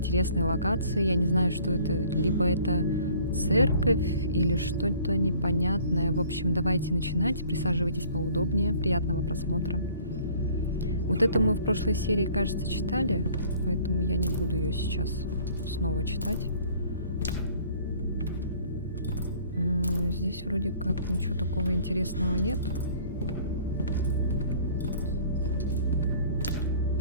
локации. Я не знаю, что это. Либо это церковь или что-то непонятное. В общем, давайте начинать. Присаживайтесь поудобнее. Приятного просмотра. Вот это мы в прошлой серии, кажется, читали, поэтому я не буду ее сейчас снова читать. Здесь вроде как ничего такого интересного нет.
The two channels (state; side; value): inverted; both; correlation -0.54